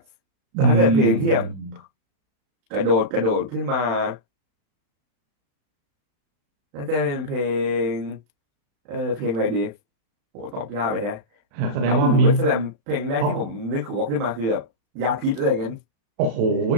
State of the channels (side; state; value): left; late; 36 ms